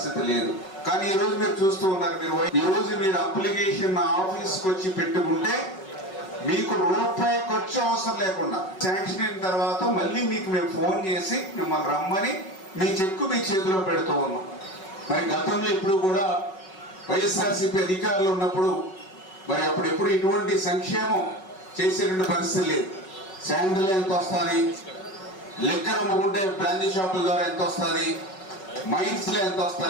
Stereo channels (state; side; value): late; right; 5.3 ms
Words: లేదు. కానీ ఈ రోజు మీరు చూస్తూ ఉన్నారు, ఈ రోజు మీరు అప్లికేషన్ ఆఫీస్కి వచ్చి పెట్టుకుంటే మీకు రూపాయి ఖర్చు అవసరం లేకుండా శాంక్షన్ అయిన తర్వాత మళ్ళీ మీకు మేము ఫోన్ చేసి మిమ్మల్ని రమ్మని మీ చెక్కు మీ చేతిలో పెడుతూ ఉన్నాం. మరి గతంలో ఇప్పుడు కూడా వైఎస్ఆర్సీపీ అధికారులు ఉన్నప్పుడు మరి అప్పుడు ఎప్పుడు ఇటువంటి సంక్షేమం చేసేటువంటి పరిస్థితి లేదు. శాండిల్ ఎంత వస్తుంది, లిక్కర్ అమ్ముకుంటే బ్రాందీ షాపుల ద్వారా ఎంత వస్తుంది, మైన్స్లో ఎంత